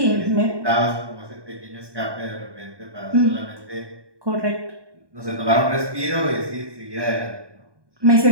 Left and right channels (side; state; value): left; late; 1.2 ms